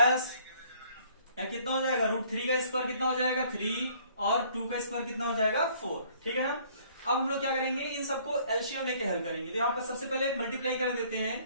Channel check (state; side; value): inverted; both; correlation -0.59